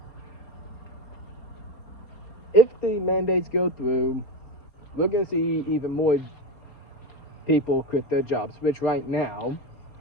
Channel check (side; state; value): right; late; 4.2 ms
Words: If the mandates go through, we're going to see even more people quit their jobs, which right now,